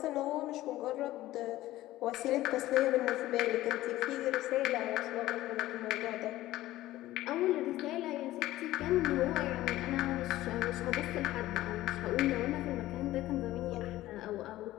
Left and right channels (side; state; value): right; quieter; 15.8 dB